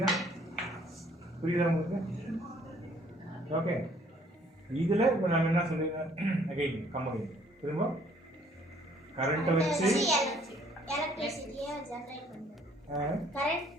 உங்களுக்கு? ஓகே, இதில் இப்போ நம்ம என்ன சொல்லிடுறோம்? அகைன் கம்பெனி திரும்ப கரண்ட்டை வச்சு எலக்ட்ரிசிட்டியை ஜெனரேட் பண்ணுறது.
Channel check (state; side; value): normal; both; correlation 0.61